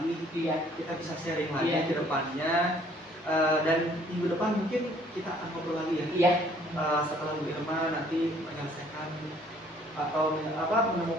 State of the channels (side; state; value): both; normal; correlation 0.60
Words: Iya. kita bisa sharing lagi Iya. ke depannya. Dan minggu depan mungkin kita akan ngobrol lagi ya. Iya. Setelah Bu Irma nanti menyelesaikan atau